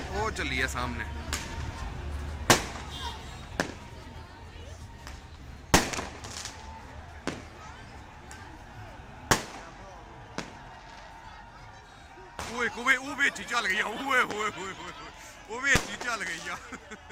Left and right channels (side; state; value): both; identical; correlation 1.00